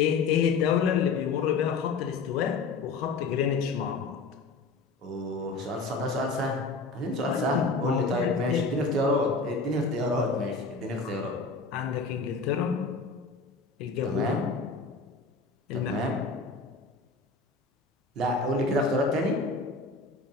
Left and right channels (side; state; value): right; quieter; 4.0 dB